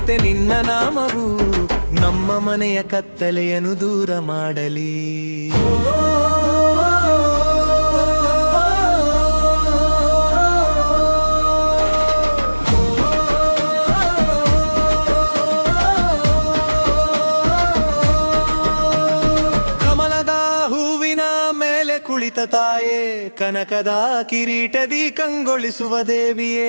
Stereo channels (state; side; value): inverted; both; correlation -1.00